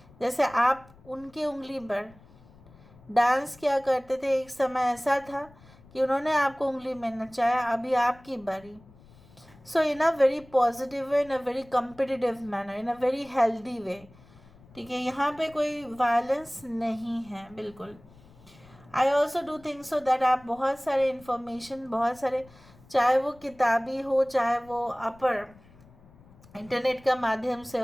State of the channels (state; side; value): noise; left; rumble, 25 dB below the sound